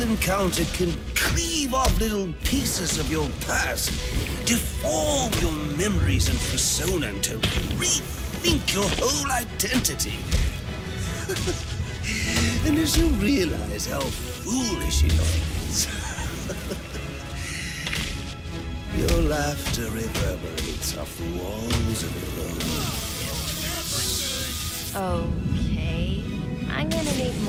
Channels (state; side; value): identical; both; correlation 1.00